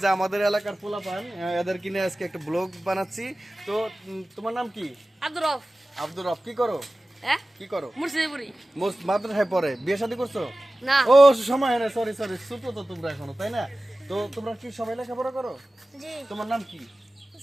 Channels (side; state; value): both; normal; correlation 0.96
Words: যে আমাদের এলাকার পোলাপান এদের কিনে আজকে একটা ব্লগ বানাচ্ছি। তো তোমার নাম কি? আব্দুর রফ। আব্দুর রফ। কি করো? হ্যাঁ, কি করো? মুর্শিদপুরি। মাদ্রাসায় পড়ে। বিয়ে শাদী করছো? না। ও সময় হয় না, সরি ছোট তো তোমরা এখনো, তাই না? তো তোমরা কি সবাই লেখাপড়া করো? জি। তোমার নাম কি?